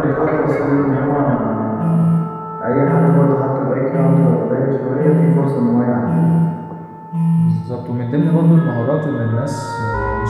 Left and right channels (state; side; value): identical; both; correlation 1.00